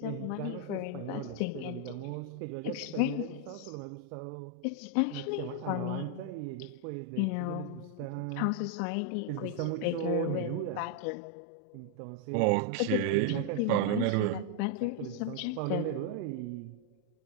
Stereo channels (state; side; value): different; both; correlation 0.00